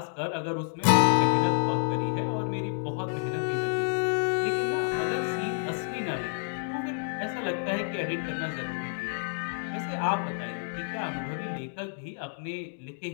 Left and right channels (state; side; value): silent; right; digital silence